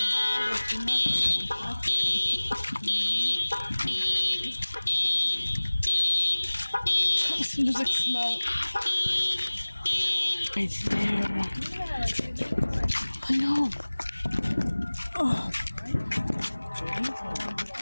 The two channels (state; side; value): inverted; both; correlation -1.00